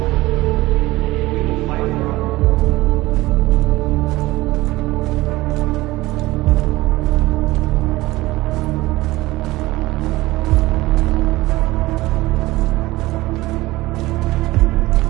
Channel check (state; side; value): quieter; left; 18.9 dB